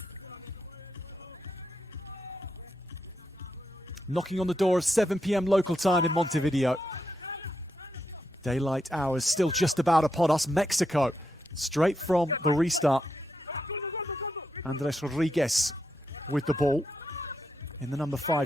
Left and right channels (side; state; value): both; normal; correlation 0.83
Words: Knocking on the door of 7 p.m. local time in Montevideo. Daylight hours still just about upon us. Mexico, straight from the restart. Andres Rodriguez with the ball in the number